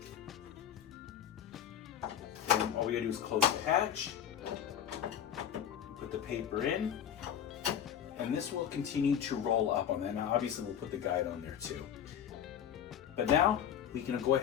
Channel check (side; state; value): right; quieter; 9.4 dB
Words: And all we gotta do is close the hatch, put the paper in, and this will continue to roll up on that. Now obviously we'll put the guide on there too. But now we can go